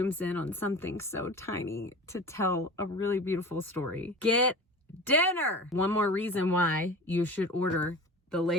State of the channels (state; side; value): normal; both; correlation 0.35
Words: in on something so tiny to tell a really beautiful story. Get dinner! One more reason why you should order the